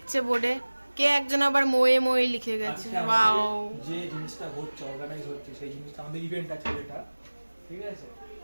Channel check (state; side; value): inverted; both; correlation -1.00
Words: বোর্ডে, কে একজন আবার মোয়ে মোয়ে লিখে গেছে। ওয়াও, যে জিনিসটা হচ্ছে অর্গানাইজ হচ্ছে সেই জিনিসটা আমাদের ইভেন্ট আছে এটা, ঠিক আছে?